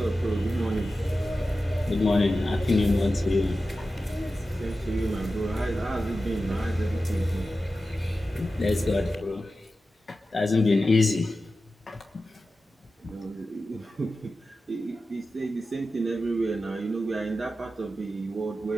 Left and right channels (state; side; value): normal; both; correlation 0.93